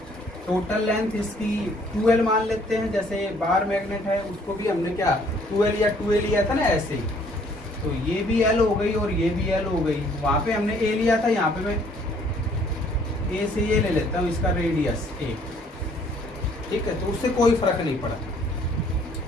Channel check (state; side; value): normal; both; correlation 0.61